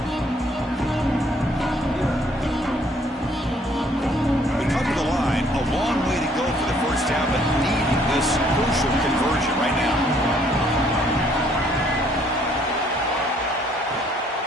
We come to the line. A long way to go for the 1st down, but needing this crucial conversion right now.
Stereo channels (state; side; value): normal; both; correlation 0.64